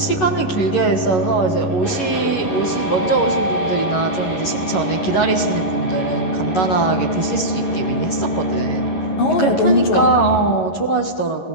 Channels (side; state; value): right; late; 11 ms